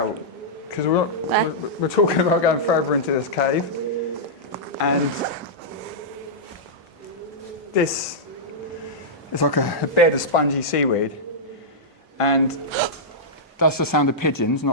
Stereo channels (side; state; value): both; normal; correlation -0.11